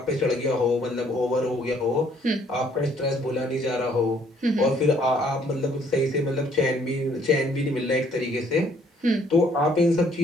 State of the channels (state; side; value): normal; both; correlation 0.63